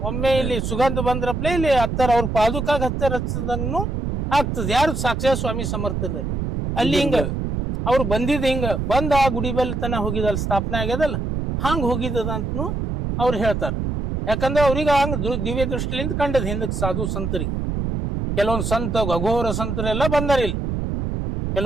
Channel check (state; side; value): noise; right; rumble, 2 dB below the sound